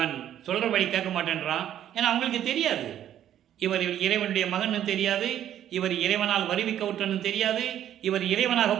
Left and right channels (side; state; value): left; quieter; 11.0 dB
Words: சொல்கிறபடி கேட்க மாட்டேன்றான். ஏன்னா அவங்களுக்கு தெரியாது, இவர் இறைவனுடைய மகன்னு தெரியாது, இவர் இறைவனால் வருவிக்க விட்டன்னு தெரியாது, இவர் இறைவனாக